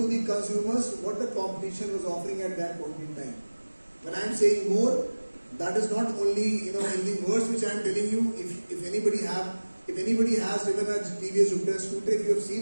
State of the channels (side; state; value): both; inverted; correlation -1.00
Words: the consumers what the competition was offering at that point in time. When I am saying more, that is not only in the words which I am telling you. If anybody has driven a TVS Jupiter scooter, if you have